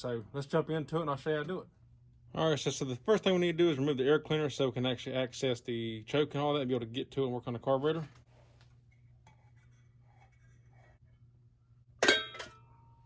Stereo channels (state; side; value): identical; both; correlation 1.00